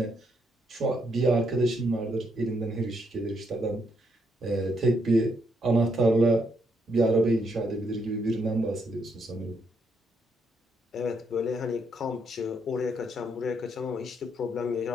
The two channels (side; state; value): both; normal; correlation 0.76